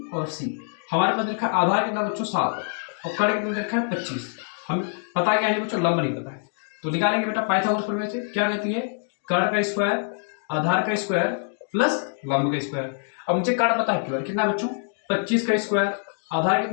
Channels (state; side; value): silent; right; digital silence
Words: और सी। हमारे पास रखा है आधार कितना बच्चों 7 और कर्ण कितना रखा है 25। हमें पता क्या है बच्चों, लंब नहीं पता है, तो निकालेंगे बेटा पाइथागोरस प्रमेय से। क्या कहती है, कर्ण का स्क्वायर आधार का स्क्वायर प्लस लंब का स्क्वायर। अब मुझे कर्ण पता है कितना बच्चों 25 का स्क्वायर, आधार